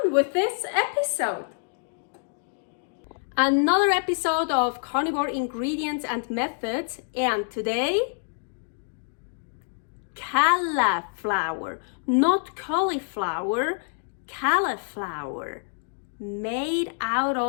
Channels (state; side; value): silent; right; digital silence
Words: with this episode! Another episode of Carnivore Ingredients and Methods, and today, Calaflower, not cauliflower, Calaflower, made out